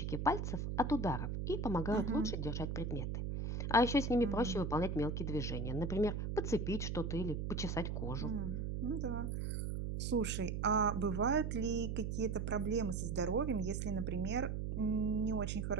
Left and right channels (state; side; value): noise; right; hum, 2 dB below the sound